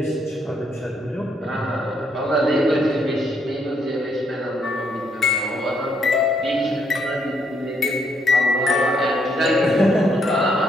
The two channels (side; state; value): both; normal; correlation 0.73